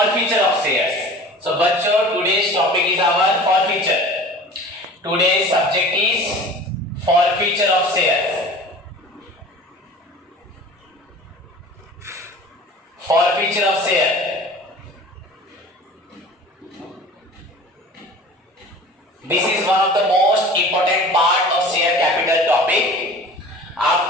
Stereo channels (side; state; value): both; normal; correlation 0.41